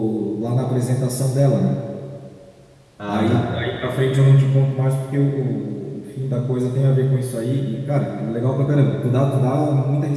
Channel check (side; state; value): both; identical; correlation 1.00